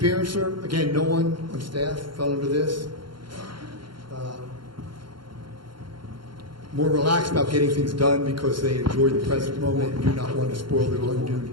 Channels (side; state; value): left; late; 0.72 ms